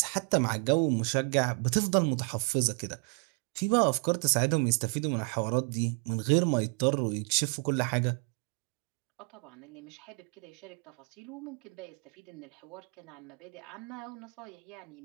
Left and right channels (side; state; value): left; quieter; 38.7 dB